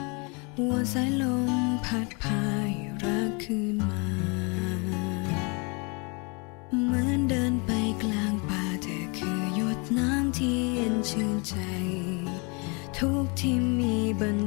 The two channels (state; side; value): quieter; right; 31.6 dB